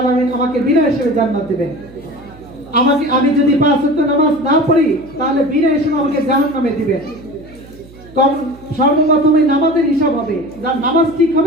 আমাকে বিনা হিসেবে জান্নাত দিবেন। আমি যদি 5 ওয়াক্ত নামাজ না পড়ি, তাহলে বিনা হিসেবে আমাকে জাহান্নামে দিবেন। সর্বপ্রথমে নামাজের হিসাব হবে, যার নামাজ ঠিক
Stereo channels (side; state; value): right; noise; hum, 22 dB below the sound